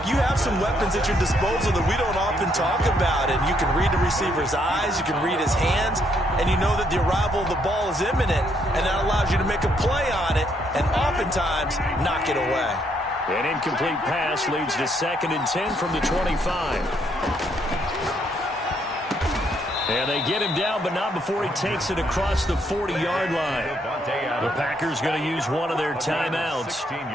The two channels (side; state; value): both; normal; correlation 0.72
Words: you have some weapons at your disposal that we don't often talk about, and you can read the receiver's eyes, you can read his hands, and you know that the arrival of the ball is imminent, and that allows you to make a play on it, and oftentimes knock it away. An incomplete pass leads to 2nd and 10 from the 25. And they get him down, but not before he takes it across the 40-yard line. The Packers going to use one of their timeouts 16